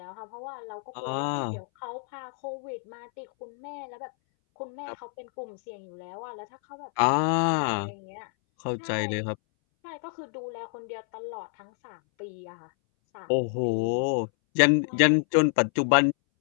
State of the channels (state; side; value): silent; right; 59 dB below the other